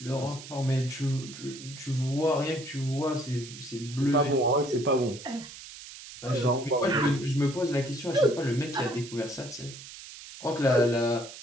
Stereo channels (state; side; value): noise; right; hiss, 14 dB below the sound